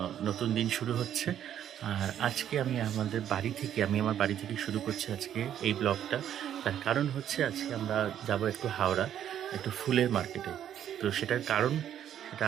নতুন দিন শুরু হচ্ছে। আর আজকে আমি আমার বাড়ি থেকে শুরু করছি আজকে এই ব্লগটা। তার কারণ হচ্ছে আজকে আমরা যাব একটু হাওড়া, একটু ফুলের মার্কেটে। তো সেটার কারণ সেটা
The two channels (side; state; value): left; quieter; 10.3 dB